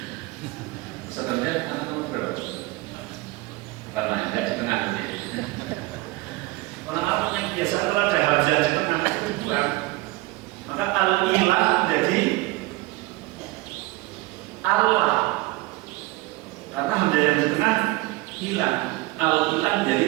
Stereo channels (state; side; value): quieter; left; 20.5 dB